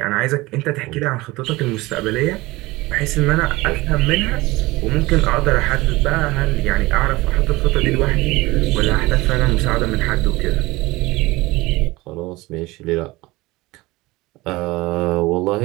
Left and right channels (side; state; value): left; quieter; 20.8 dB